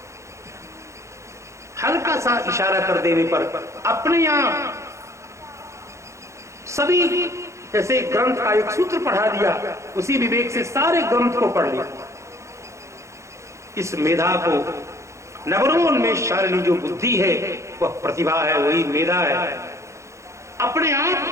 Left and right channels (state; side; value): late; left; 0.14 ms